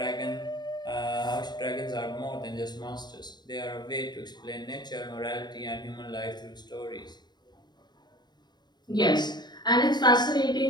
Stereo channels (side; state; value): right; late; 0.21 ms